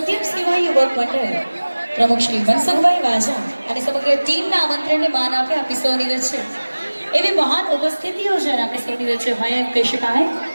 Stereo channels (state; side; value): inverted; both; correlation -1.00